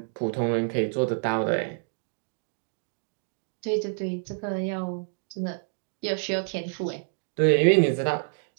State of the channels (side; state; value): left; silent; digital silence